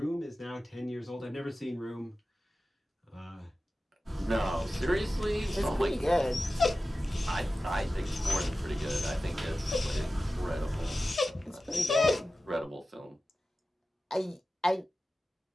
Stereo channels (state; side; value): normal; both; correlation 0.95